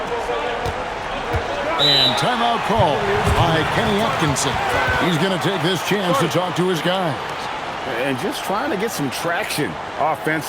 And timeout call by Kenny Atkinson. He's going to take this chance to talk to his guys. And just trying to get some traction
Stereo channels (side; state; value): both; identical; correlation 1.00